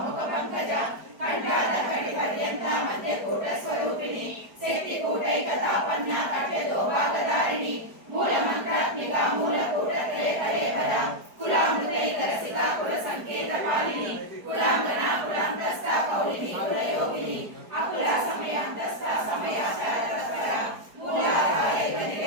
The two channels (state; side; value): late; left; 4.8 ms